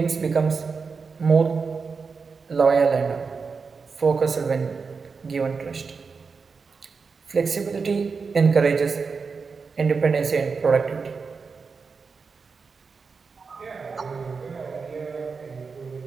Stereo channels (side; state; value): left; quieter; 5.0 dB